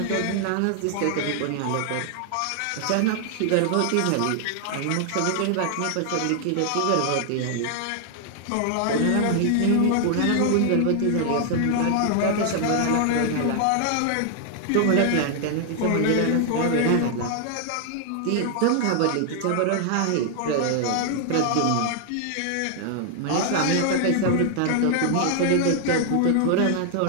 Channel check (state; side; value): different; both; correlation 0.00